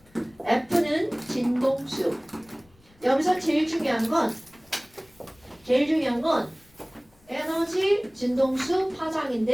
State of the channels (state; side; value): noise; left; rumble, 30 dB below the sound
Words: F는 진동수. 여기서 제일 중요한 건 에너지, 진동수,